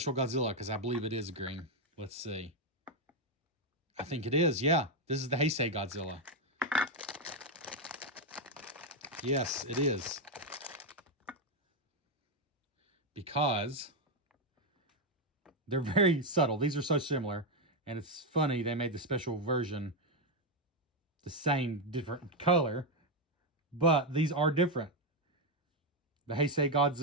Godzilla because I believe it is green. Let's see. I think it is. Yeah. This is the Heisei Godzilla. Yes, it is. Because they're very subtle. These are so similar. And it's funny they made the special version the same, different color. But these are different. The Heisei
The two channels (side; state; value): both; normal; correlation 0.04